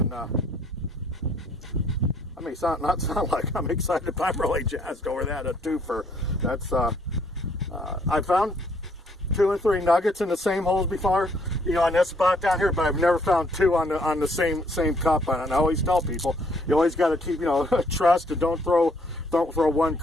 I may not sound like I'm excited, but I'm really jazzed over that. A twofer. That's I found 2 or 3 nuggets in the same holes before, you know, on this spot down here, but I've never found 2 on the same cup. And I always tell people, you always got to keep, you know, trust, and don't throw one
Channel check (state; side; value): normal; both; correlation 0.66